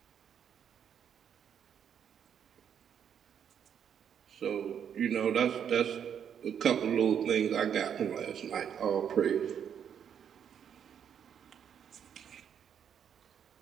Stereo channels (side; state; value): left; quieter; 8.4 dB